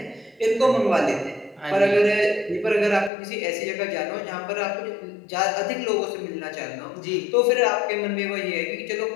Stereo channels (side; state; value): right; drops out; at 3.1 s